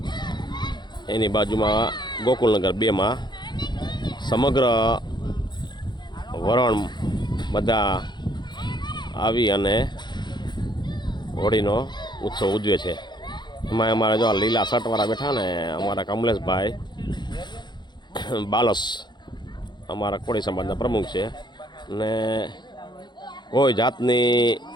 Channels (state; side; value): late; right; 0.21 ms